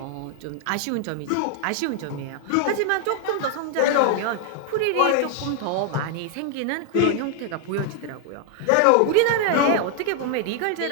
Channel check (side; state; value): both; different; correlation 0.00